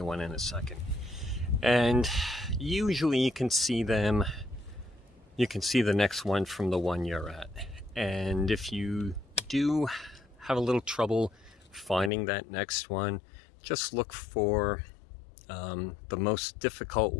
one in a second. And usually you can see them, you can see the next one from the one you're at. And if you do have a little trouble finding that next one, just look for the most difficult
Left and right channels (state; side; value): drops out; right; at 12.1 s